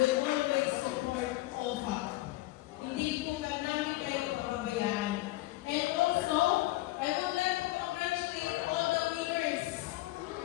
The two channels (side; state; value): right; quieter; 18.5 dB